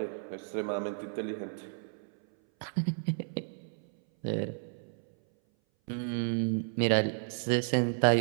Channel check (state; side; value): silent; left; 56 dB below the other